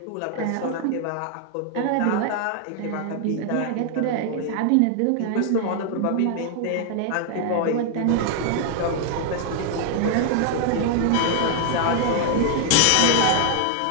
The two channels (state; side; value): different; both; correlation 0.00